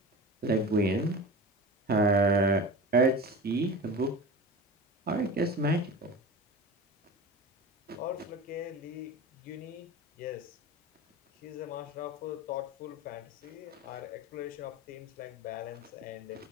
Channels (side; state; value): both; normal; correlation 0.32